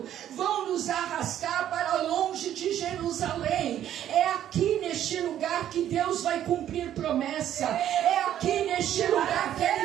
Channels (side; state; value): left; quieter; 11.1 dB